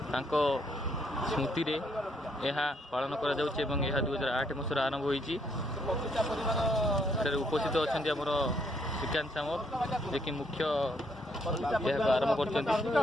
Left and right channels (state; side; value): normal; both; correlation 0.71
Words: स्मृति रे यह पालन कर 2008 मसीह आरंभ होती उपस्थित अच्छा आमर श्रीकांत सामल जे कि मुख्य आरंभ कर